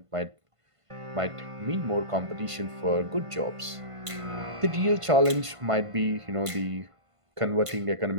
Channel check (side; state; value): left; late; 1.5 ms